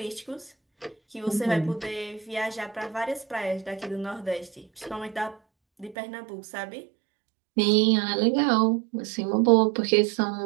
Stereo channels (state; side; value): drops out; left; at 6.0 s